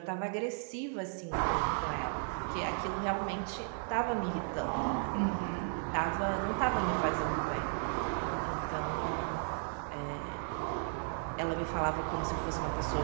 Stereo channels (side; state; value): left; silent; 54 dB below the other